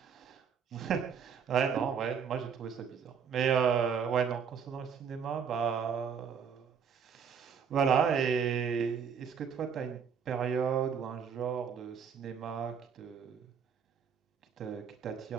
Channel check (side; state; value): left; quieter; 6.9 dB